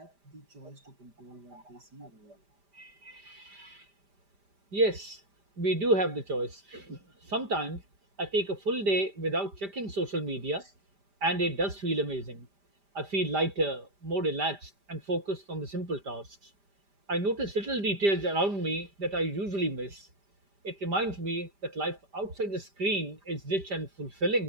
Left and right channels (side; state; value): left; late; 5.0 ms